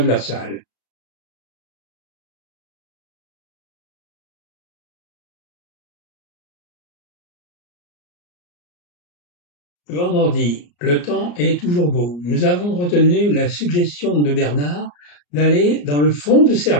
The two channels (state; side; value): late; right; 34 ms